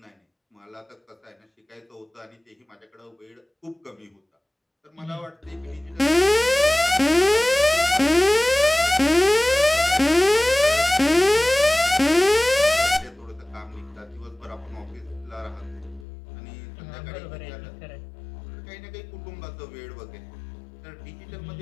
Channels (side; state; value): right; drops out; at 16.1 s